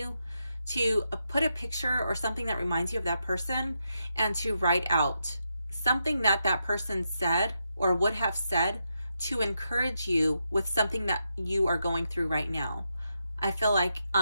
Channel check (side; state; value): both; inverted; correlation -0.84